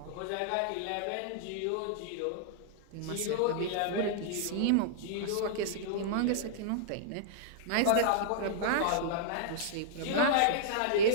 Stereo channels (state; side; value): different; both; correlation -0.02